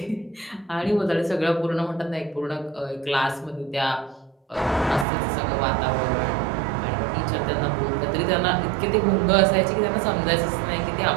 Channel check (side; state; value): left; drops out; at 5.1 s